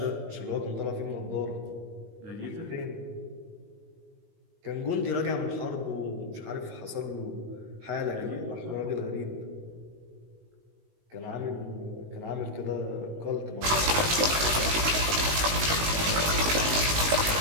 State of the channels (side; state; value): left; late; 19 ms